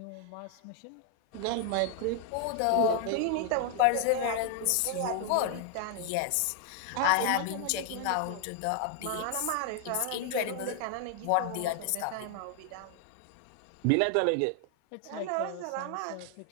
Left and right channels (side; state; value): both; different; correlation 0.00